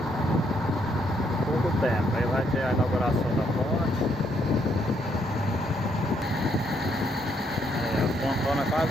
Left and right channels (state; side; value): normal; both; correlation 0.72